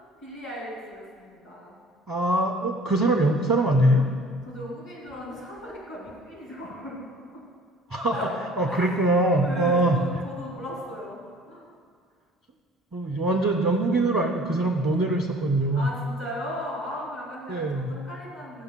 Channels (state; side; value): normal; both; correlation 0.50